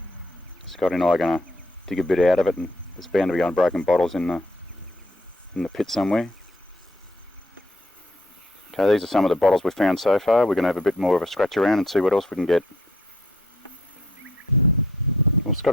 Scotty and I are going to dig a bit out of it, and there's bound to be unbroken bottles in the pit somewhere. Okay, these are some of the bottles we've found so far. We're going to have a bit more of a scratch around and see what else we can get. Well,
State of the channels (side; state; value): both; normal; correlation 0.67